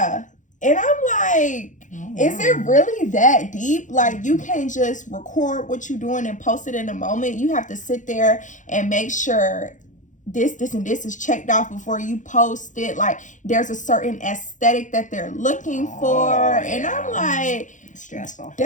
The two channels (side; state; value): right; late; 0.36 ms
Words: And I'm like, is it really that deep? Like, you can't just record what you're doing and post it in a moment. You have to sit there and make sure this, and this is checked off before you post it. Like, there's a certain aesthetic that they're looking for. And I'm like, stressful.